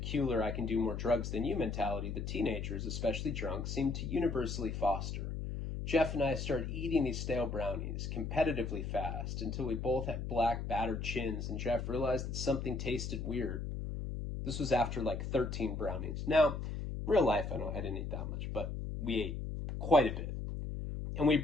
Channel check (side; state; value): left; noise; hum, 4 dB below the sound